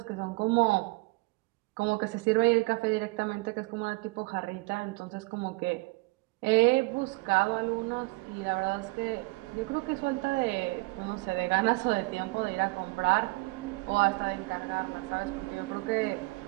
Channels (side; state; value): left; quieter; 25.3 dB